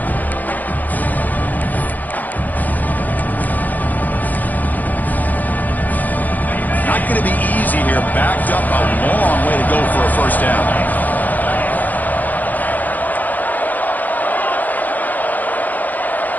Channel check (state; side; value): late; right; 0.083 ms